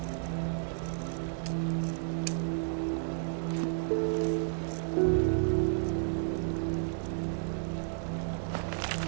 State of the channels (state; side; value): silent; left; digital silence